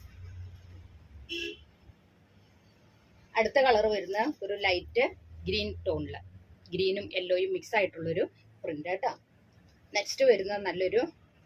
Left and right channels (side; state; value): both; identical; correlation 1.00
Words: അടുത്ത കളർ വരുന്ന ഒരു ലൈറ്റ് ഗ്രീൻ ടോണിൽ, ഗ്രീനും യെല്ലോയും മിക്സ് ആയിട്ടുള്ളൊരു പ്രിന്റ് കേട്ടോ. നെക്സ്റ്റ് വരുന്നത് നല്ലൊരു